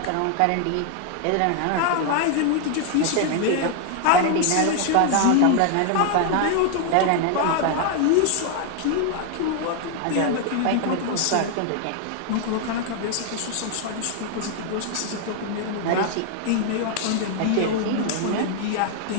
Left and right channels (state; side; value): different; both; correlation 0.00